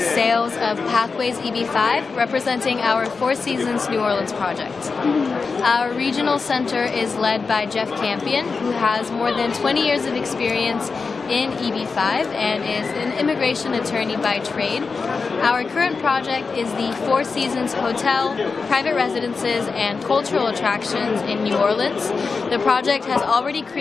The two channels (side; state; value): right; quieter; 4.7 dB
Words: of Pathways EB-5, representing our Four Seasons New Orleans project. Our regional center is led by Jeff Campion, who has more than 20 years of experience in EB-5 and is an immigration attorney by trade. Our current project is the Four Seasons Hotel, private residences, and cultural attractions in New Orleans. The project has already